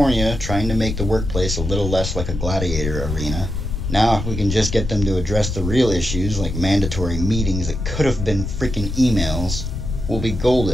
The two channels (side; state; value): left; noise; rumble, 5 dB below the sound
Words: trying to make the workplace a little less like a gladiator arena. Now, if we can just get them to address the real issues, like mandatory meetings that could have been freaking emails, we'll be